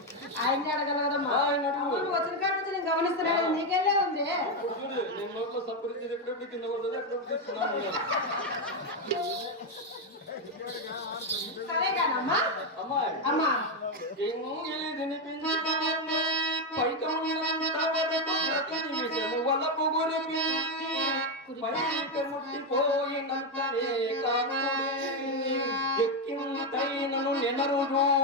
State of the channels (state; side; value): normal; both; correlation 0.06